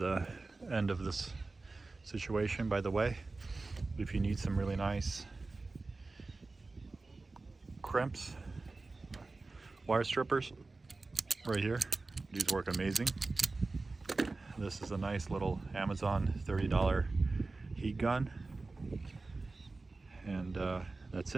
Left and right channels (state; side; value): quieter; left; 3.5 dB